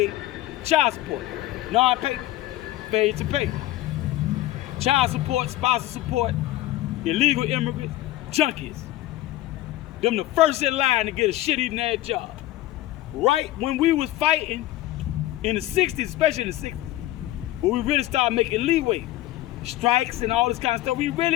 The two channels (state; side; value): quieter; right; 15.8 dB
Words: child support. Failure to pay. Child support, spousal support, illegal immigrants, junkies. Them the first in line to get a shit-eating ass job. Right when we was fighting in the 60s, especially in the 60s, when we really started making leeway, strikes and all this kind of stuff, we